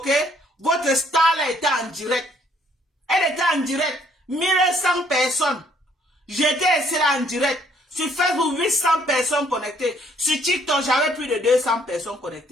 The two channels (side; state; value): both; normal; correlation 0.65